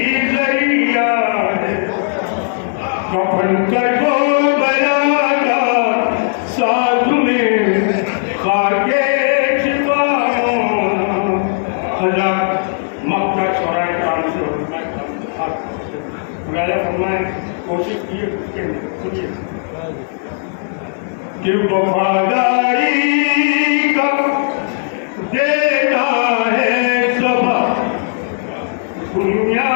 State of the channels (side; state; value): right; silent; digital silence